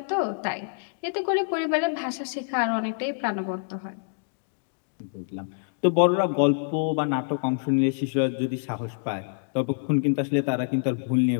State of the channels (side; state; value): right; silent; digital silence